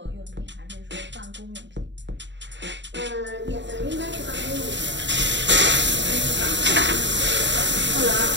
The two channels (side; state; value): left; late; 0.52 ms